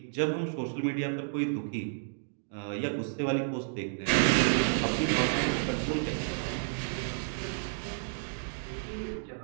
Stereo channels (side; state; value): left; silent; digital silence